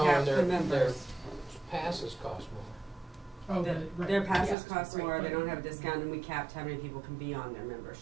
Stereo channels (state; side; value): drops out; left; at 4.5 s